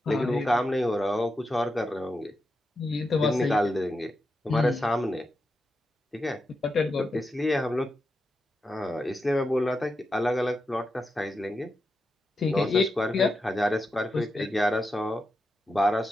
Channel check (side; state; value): both; normal; correlation 0.88